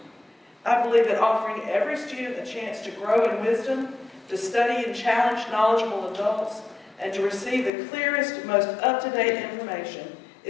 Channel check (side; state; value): right; drops out; at 7.7 s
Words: I believe that offering every student a chance to grow in wisdom, to study and challenge knowledgeable adults, and to receive the clearest, most up-to-date information